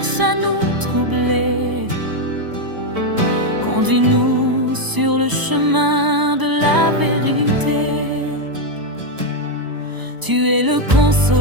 à nous troubler. Conduis-nous sur le chemin de la vérité. Tu es le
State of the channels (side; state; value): left; late; 1.0 ms